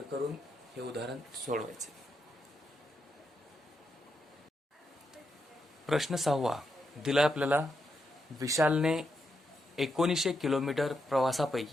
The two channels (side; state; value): both; normal; correlation 0.83